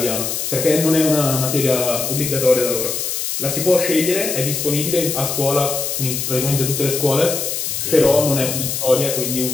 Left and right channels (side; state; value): left; noise; hiss, 3 dB below the sound